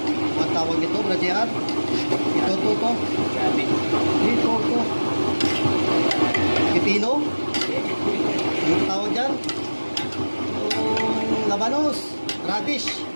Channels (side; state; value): both; inverted; correlation -1.00